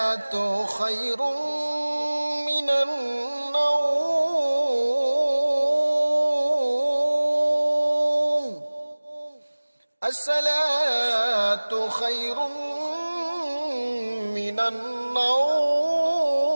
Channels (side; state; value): both; inverted; correlation -1.00